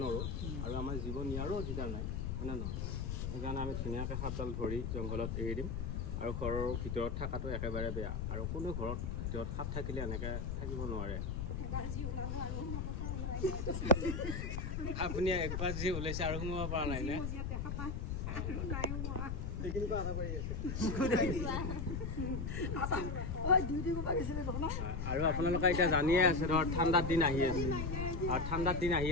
নোৱাৰোঁ আৰু আমাৰ জীৱ নিয়াৰো অধিকাৰ নাই হয়নে নহয় সেইকাৰণে আমি ধুনীয়াকৈ সাপডাল ধৰি জংঘলত এৰি দিম আৰু ঘৰৰ ভিতৰত থকাটো একেবাৰে বেয়া আৰু কোনো ঘৰত ভিতৰত সাপ থাকিলে এনেকৈ থাকিব নোৱাৰে আপুনি একবাৰ যি ওলাইছে আৰু সোমাব পৰা নাই নে আৰু আপোনালোকে এতিয়া জানিয়ে আছে ধৰ ঠাণ্ডাৰ দিন আহি আছে আৰু ঠাণ্ডাৰ দিন আহি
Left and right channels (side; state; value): left; noise; rumble, 2 dB below the sound